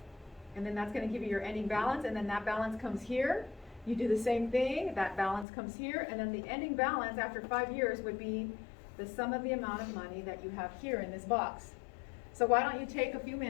and then that's going to give you your ending balance, and then that balance comes here. You do the same thing, that balance comes here, and then the ending balance after 5 years would be the sum of the amount of money that you have here in this box. So why don't you take a few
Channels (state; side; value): drops out; right; at 5.5 s